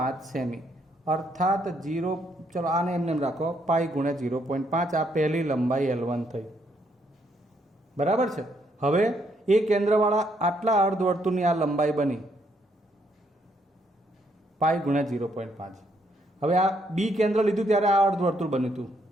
સેમી. અર્થાત 0, ચલો આને એમને રાખો, પાઈ ગુણ્યા 0.5. આ પહેલી લંબાઈ L1 થઈ. બરાબર છે. હવે એ કેન્દ્રવાળા આટલા અર્ધવર્તુળની આ લંબાઈ બની પાઈ ગુણ્યા 0.5. હવે આ બી કેન્દ્ર લીધું ત્યારે આ અર્ધવર્તુળ બન્યું હતું.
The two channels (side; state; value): both; normal; correlation 0.73